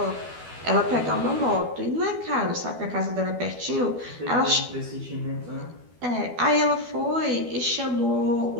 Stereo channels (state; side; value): late; left; 12 ms